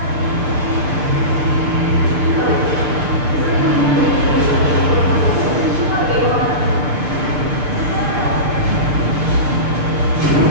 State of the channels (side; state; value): left; late; 6.7 ms